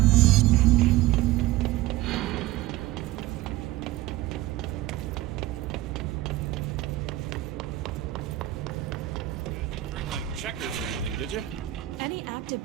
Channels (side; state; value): left; quieter; 15.9 dB